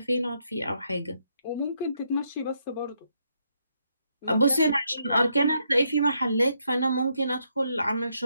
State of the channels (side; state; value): both; inverted; correlation -0.77